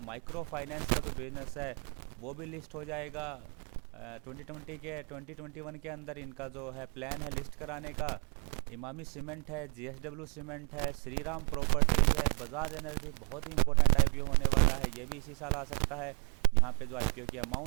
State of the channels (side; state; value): left; quieter; 39.7 dB